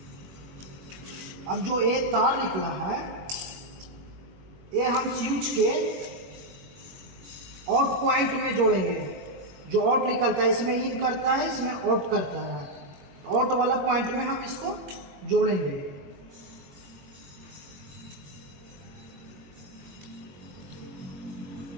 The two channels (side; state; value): left; late; 21 ms